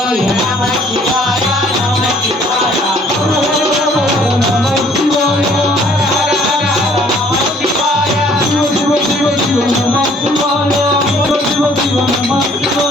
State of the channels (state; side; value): normal; both; correlation 0.59